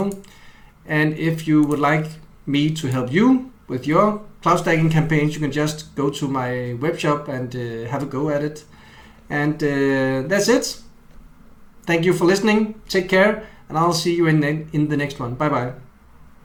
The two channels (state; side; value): identical; both; correlation 1.00